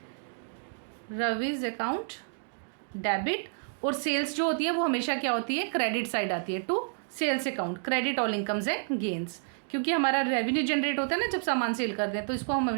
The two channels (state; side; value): silent; left; digital silence